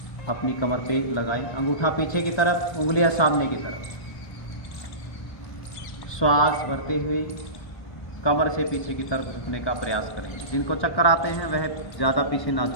अपनी कमर पे लगाएं, अंगूठा पीछे की तरफ, उंगलियां सामने की तरफ। श्वास भरते हुए कमर से पीछे की तरफ झुकने का प्रयास करेंगे। जिनको चक्कर आते हैं वह ज़्यादा पीछे ना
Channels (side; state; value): right; late; 1.2 ms